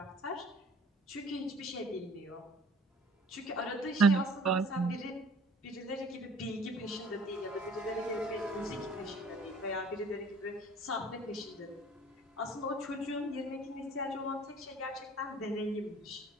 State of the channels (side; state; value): both; normal; correlation 0.52